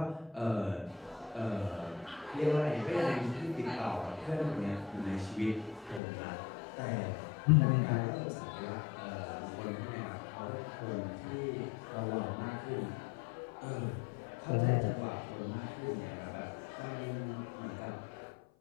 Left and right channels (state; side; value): drops out; right; at 6.0 s